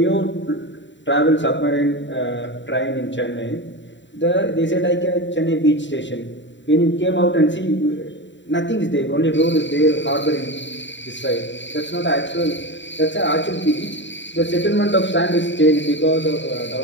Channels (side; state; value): right; late; 0.53 ms